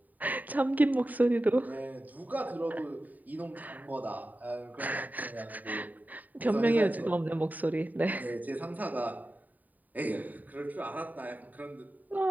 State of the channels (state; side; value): late; left; 0.082 ms